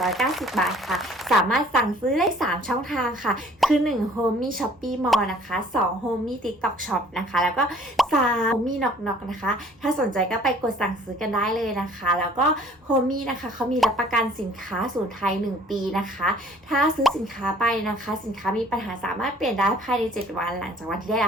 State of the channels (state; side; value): normal; both; correlation 0.54